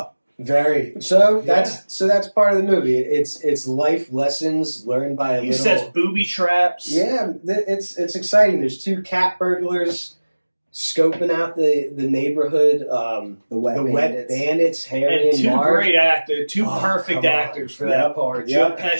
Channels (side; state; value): both; inverted; correlation -1.00